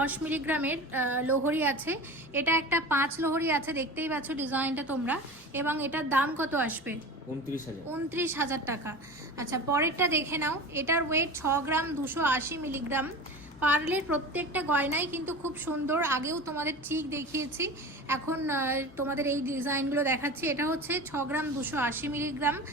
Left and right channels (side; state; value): both; normal; correlation 0.32